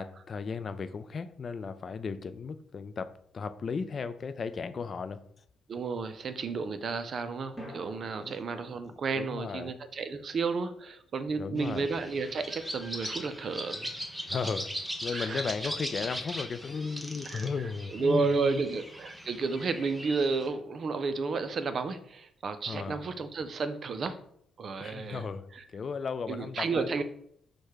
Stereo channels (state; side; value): normal; both; correlation 0.80